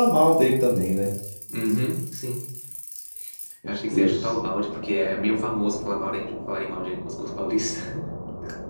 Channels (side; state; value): both; inverted; correlation -1.00